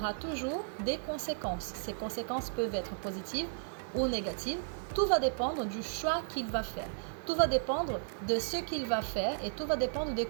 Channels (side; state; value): left; silent; digital silence